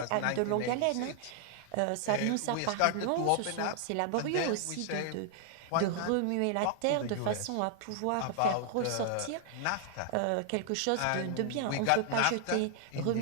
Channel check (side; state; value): both; different; correlation 0.00